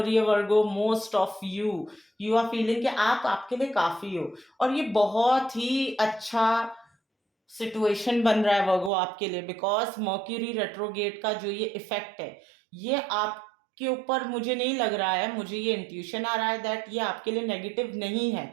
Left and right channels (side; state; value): left; drops out; at 8.9 s